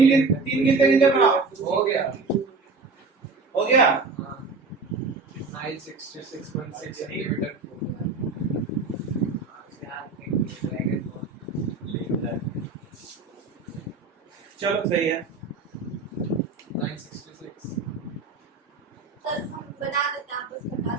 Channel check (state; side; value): quieter; left; 4.0 dB